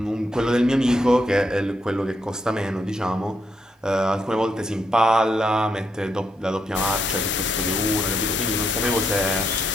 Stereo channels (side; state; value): both; normal; correlation 0.79